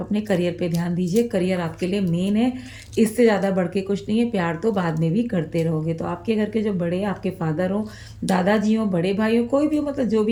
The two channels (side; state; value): both; identical; correlation 1.00